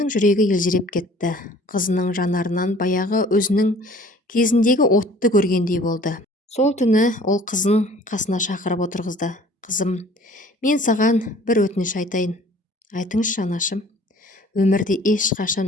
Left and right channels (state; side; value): normal; both; correlation 0.52